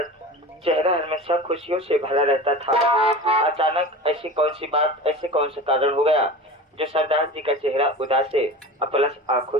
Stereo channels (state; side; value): normal; both; correlation 0.33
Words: चेहरा हमेशा खुशियों से भरा रहता था। अचानक ऐसी कौन सी बात, ऐसे कौन सा कारण हो गया जो सरदार जी का चेहरा उदास है, प्लस आंखों